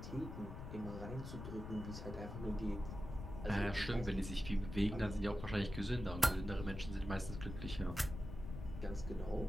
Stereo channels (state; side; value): noise; left; rumble, 8 dB below the sound